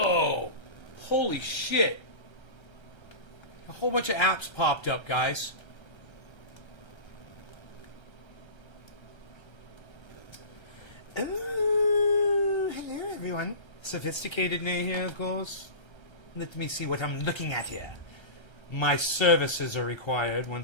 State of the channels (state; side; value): late; right; 1.3 ms